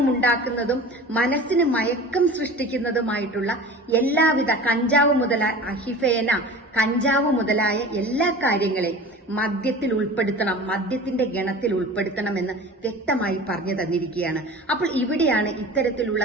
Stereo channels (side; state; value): both; normal; correlation 0.38